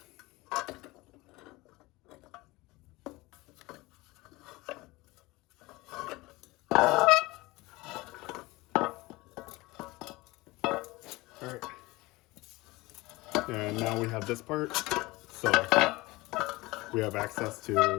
Alright, and now we have this part, so we have access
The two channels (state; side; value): quieter; right; 21.3 dB